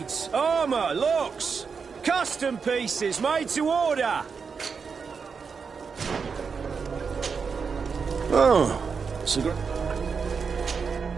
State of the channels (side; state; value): left; quieter; 5.6 dB